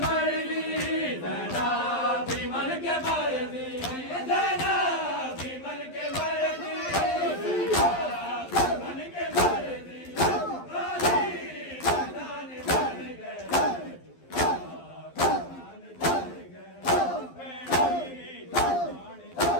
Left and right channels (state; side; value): late; right; 11 ms